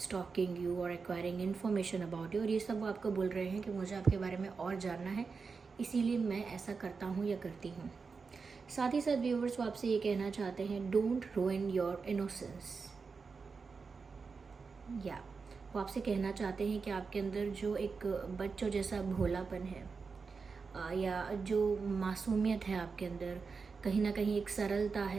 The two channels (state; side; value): quieter; left; 4.9 dB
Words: you or acquiring information about you। और ये सब वो आपको बोल रहे हैं कि मुझे आपके बारे में और जानना है, इसीलिए मैं ऐसा करता हूँ या करती हूँ। साथ ही साथ व्यूअर्स वो आपसे ये कहना चाहते हैं, डोंट ruin योर इनोसेंस। या वो आपसे कहना चाहते हैं कि आपके अंदर जो एक बच्चों जैसा भोलापन है या जो मासूमियत है आपके अंदर, कहीं ना कहीं एक सरलता